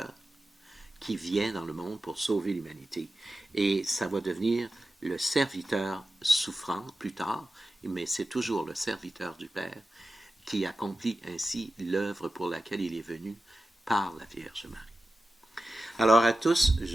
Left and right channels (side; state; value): both; normal; correlation 0.93